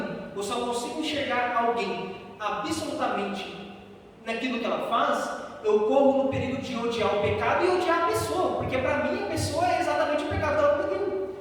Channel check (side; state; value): both; identical; correlation 1.00